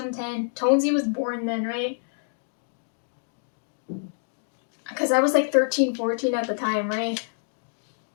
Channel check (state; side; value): silent; right; digital silence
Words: Tonesy was born then, right? Because I was like 13, 14 at the time, right?